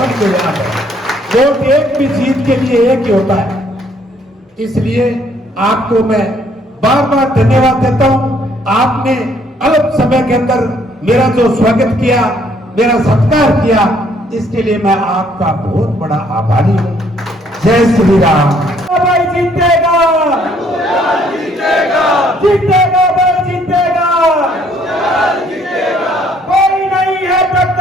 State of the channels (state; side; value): normal; both; correlation 0.65